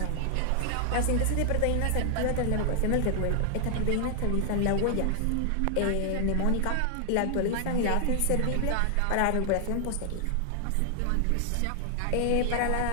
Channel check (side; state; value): both; different; correlation 0.00